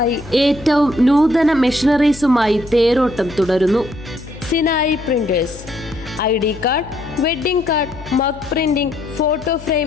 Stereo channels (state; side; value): noise; left; hum, 17 dB below the sound